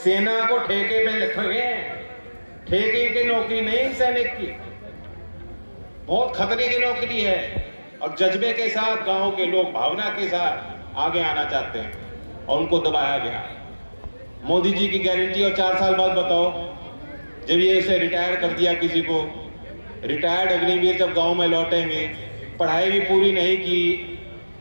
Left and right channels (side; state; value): both; inverted; correlation -1.00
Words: को ठेके पे रखेंगे, ठेके की नौकरी नहीं सैनिक की, बहुत खतरे की नौकरी है। और जज्बे के साथ गांव के लोग भावना के साथ आगे आना चाहते हैं और उनको दबाया गया। मोदी जी की गारंटी और 4 साल बाद बताओ, जब ये इसे रिटायर कर दिया किसी को, रिटायर्ड अग्निवीर जब गांव में लौटेंगे, पढ़ाई भी पूरी नहीं की,